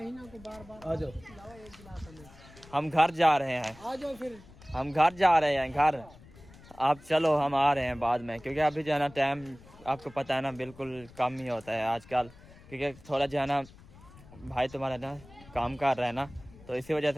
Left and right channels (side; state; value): left; noise; rumble, 22 dB below the sound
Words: को बार बार आ जाओ, एक गिलास हमें। हम घर जा रहे हैं, आ जाओ फिर हम घर जा रहे हैं घर, आप चलो हम आ रहे हैं बाद में, क्योंकि अभी जो है ना टाइम आपको पता है ना बिल्कुल कम ही होता है आजकल, क्योंकि थोड़ा जो है ना भाई तुम्हारा ना काम कर रहा है ना, तो इसी वजह